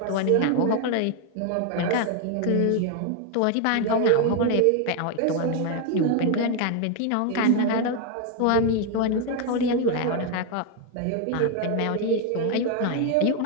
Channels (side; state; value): both; different; correlation 0.01